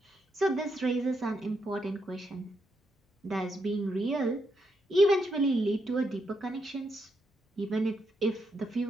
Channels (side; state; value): both; normal; correlation 0.80